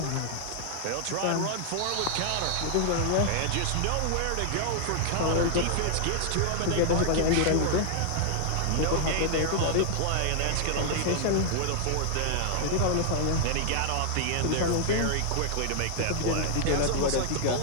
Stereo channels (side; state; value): both; different; correlation -0.01